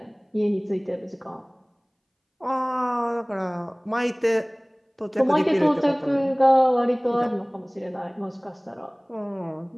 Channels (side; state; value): both; identical; correlation 1.00